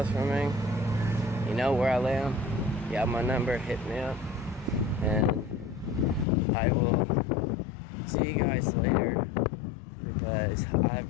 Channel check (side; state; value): right; drops out; at 6.2 s